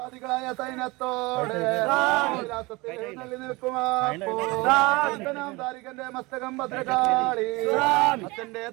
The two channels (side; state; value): left; quieter; 23.8 dB